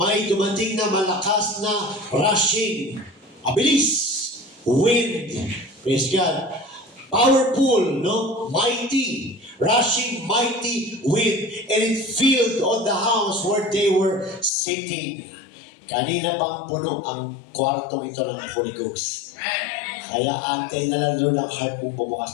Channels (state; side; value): drops out; right; at 14.5 s